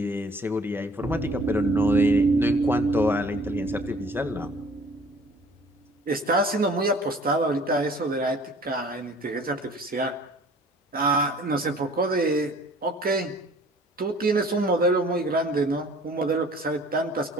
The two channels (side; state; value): both; normal; correlation 0.52